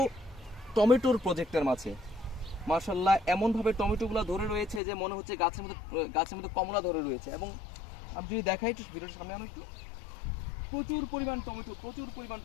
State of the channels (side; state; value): right; drops out; at 4.8 s